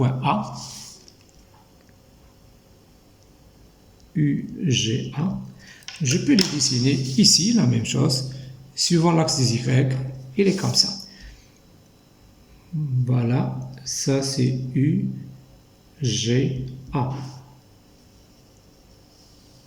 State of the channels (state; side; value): identical; both; correlation 1.00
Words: A. UGA. Je peux les dessiner ici, la même chose, suivant l'axe des Y, il est comme ça. Voilà, ça c'est UGA.